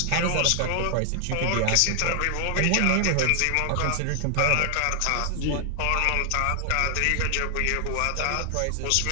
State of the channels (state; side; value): different; both; correlation 0.00